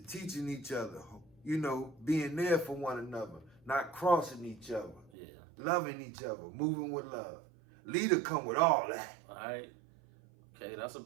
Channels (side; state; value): left; drops out; at 5.1 s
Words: each other. You know, being there for one another, not crossing each other, Yeah. loving each other, moving with love. Leader come with all that. All right. Okay, that's a